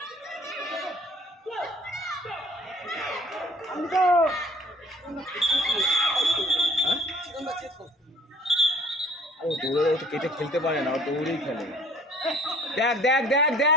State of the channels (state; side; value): normal; both; correlation 0.52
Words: ও দৌড়ে তো কেটে খেলতে পারে না, ও দৌড়েই খেলে। দেখ দেখ দেখ